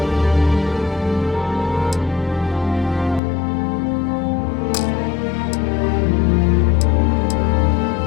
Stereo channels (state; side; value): drops out; right; at 3.2 s